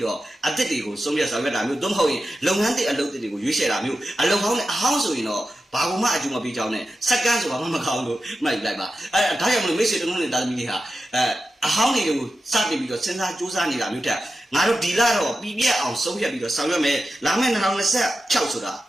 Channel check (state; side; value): normal; both; correlation 0.92